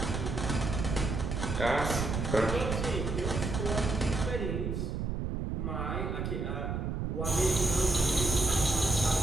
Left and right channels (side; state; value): right; noise; rumble, 2 dB below the sound